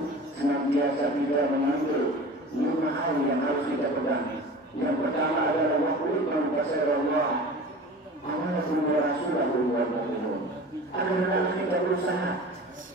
senantiasa kita mengambil 5 hal yang harus kita pegang. Yang pertama adalah waqulun kasir Allah amanakum wa rasulahu wal mu'minun. Agar kita berusaha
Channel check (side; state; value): both; normal; correlation 0.38